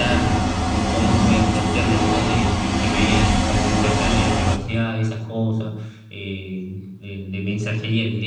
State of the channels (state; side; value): identical; both; correlation 1.00